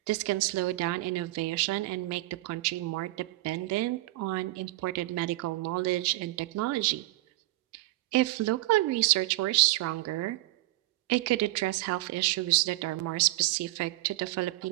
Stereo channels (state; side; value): quieter; left; 18.7 dB